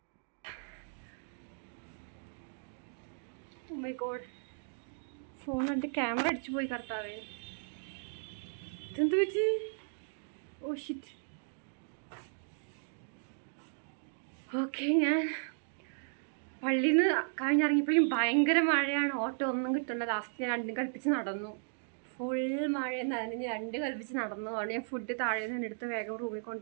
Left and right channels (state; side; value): silent; left; digital silence